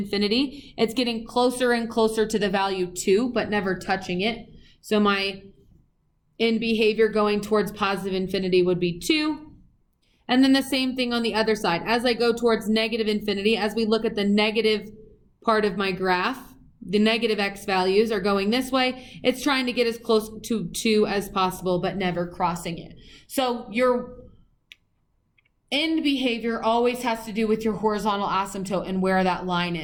it's getting closer and closer to the value 2, but never touching it. So my end behavior going towards positive infinity would be 2. And then the same thing on the other side. As I go towards negative infinity, as we look at the negative part of my graph, the negative x values are going this way. It's trying to get as close to 2 as possible, but never crossing it. So your end behavior always has to do with your horizontal asymptote and where that line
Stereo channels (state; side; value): identical; both; correlation 1.00